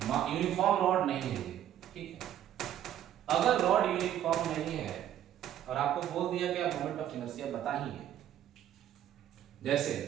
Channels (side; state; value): left; quieter; 11.1 dB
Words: uniform rod नहीं है, ठीक है, अगर रॉड यूनिफॉर्म नहीं है और आपको बोल दिया कि आप मोमेंट ऑफ इनर्शिया बताइए, जैसे